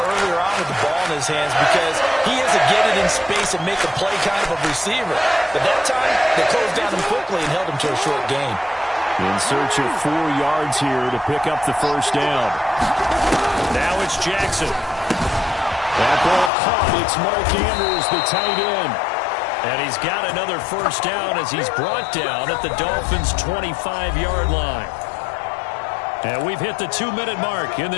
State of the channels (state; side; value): drops out; right; at 16.5 s